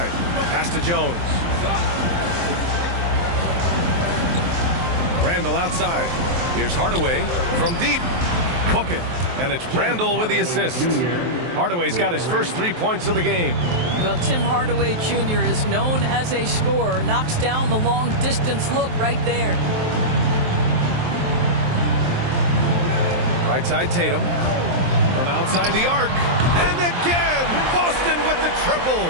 Pass to Jones. Randle outside. Here's Hardaway from deep. Hook it. And it's Randle with the assist. Hardaway's got his first 3 points of the game. Well, Tim Hardaway Jr. is known as a scorer. Knocks down the long-distance look right there. Right side Tatum. From outside the arc. And again, Boston with the triple.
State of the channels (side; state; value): left; late; 23 ms